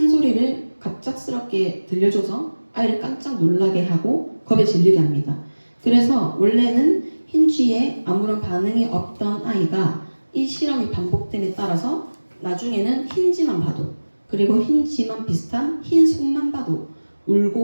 소리를 갑작스럽게 들려줘서 아이를 깜짝 놀라게 하고 겁에 질리게 합니다. 그래서 원래는 흰쥐에 아무런 반응이 없던 아이가 이 실험이 반복됨에 따라서 나중에는 흰쥐만 봐도 그리고 흰쥐만 비슷한 흰 손만 봐도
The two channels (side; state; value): both; inverted; correlation -1.00